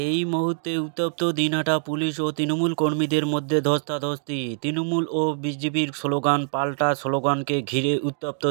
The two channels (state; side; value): silent; left; digital silence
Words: মুহূর্তে উত্তপ্ত দিনহাটা পুলিশ ও তৃণমূল কর্মীদের মধ্যে ধস্তাধস্তি। তৃণমূল ও বিজেপির স্লোগান পাল্টা স্লোগানকে ঘিরে উত্তপ্ত